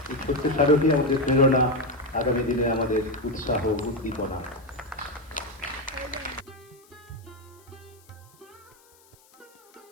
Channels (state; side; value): noise; left; hiss, 29 dB below the sound